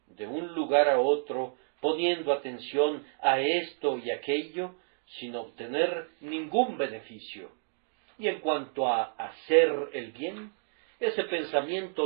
de un lugar a otro, poniendo atención a esto y aquello, sin obtener ningún beneficio. Y en cuanto a hacer el bien, ese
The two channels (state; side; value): silent; left; digital silence